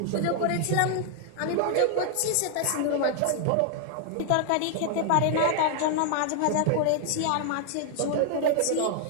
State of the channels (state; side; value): different; both; correlation 0.00